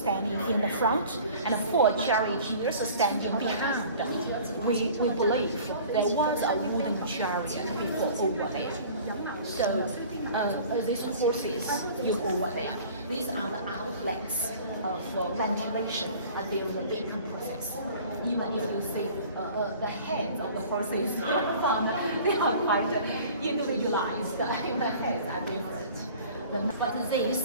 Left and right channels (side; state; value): both; inverted; correlation -0.46